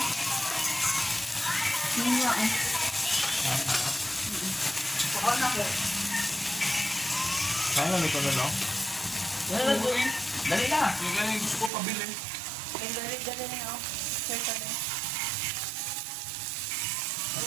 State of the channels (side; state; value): left; drops out; at 11.7 s